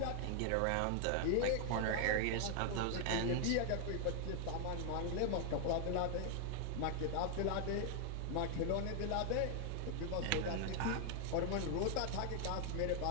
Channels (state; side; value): different; both; correlation 0.00